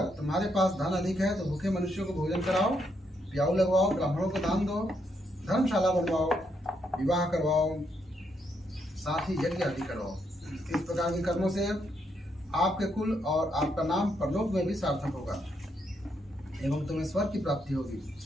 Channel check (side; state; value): both; normal; correlation 0.77